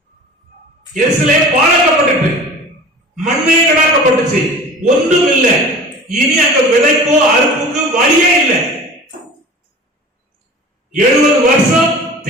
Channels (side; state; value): both; normal; correlation 0.40